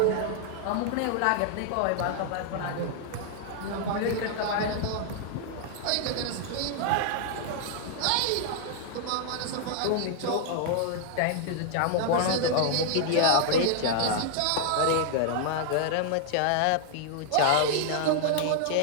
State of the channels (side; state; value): both; different; correlation -0.01